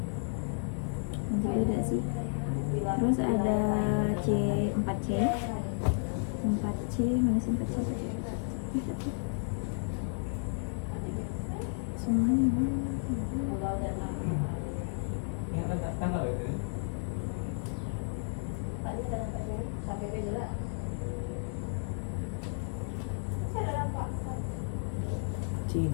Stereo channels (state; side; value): silent; right; digital silence